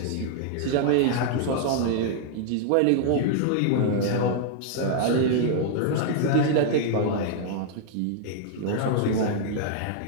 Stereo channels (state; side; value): different; both; correlation -0.01